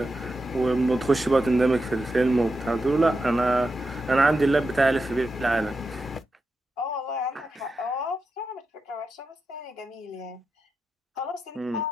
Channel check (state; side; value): normal; both; correlation 0.89